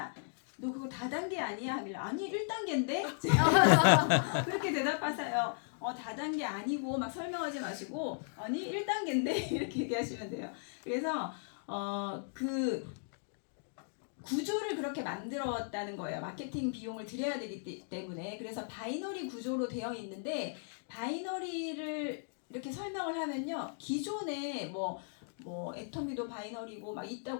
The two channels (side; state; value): right; silent; digital silence